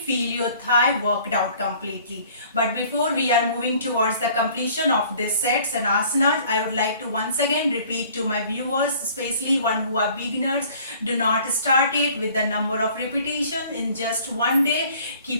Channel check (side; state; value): both; inverted; correlation -0.53